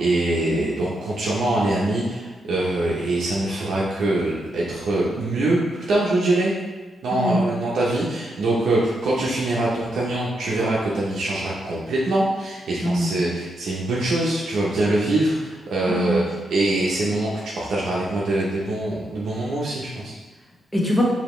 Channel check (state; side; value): normal; both; correlation 0.82